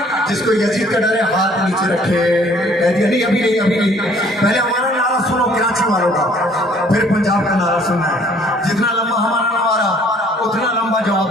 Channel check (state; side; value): normal; both; correlation 0.58